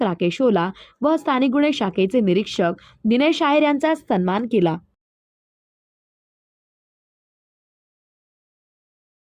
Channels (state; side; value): identical; both; correlation 1.00